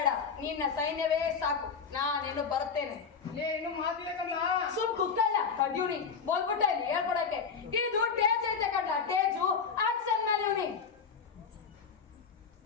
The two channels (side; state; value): right; quieter; 6.0 dB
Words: ನಿನ್ನ ಸೈನ್ಯವೇ ಸಾಕು. ನಾನಿನ್ನು ಬರುತ್ತೇನೆ. ಏನು ಮಾತಿಲ್ಲ. ಸುಮ್ ಕುಕ್ಕಲ್ಲ ಕಡ್ಯೂನಿ ಬಂದ್ಬಿಟ್ಟ ಇಲ್ಲಿ ಹೇಳ್ಕೊಡಕ್ಕೆ. ಇದು ಟೇಜ್ ಐತೆ ಕಣ್ಣ, ಟೇಜು ಆಕ್ಷನ್ ಮೇಲೆ ಇವನಿ